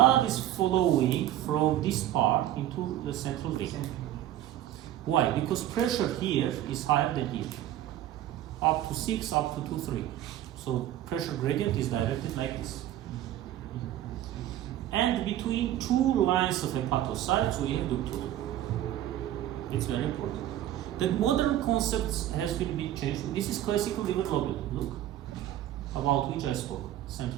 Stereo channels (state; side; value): quieter; left; 12.6 dB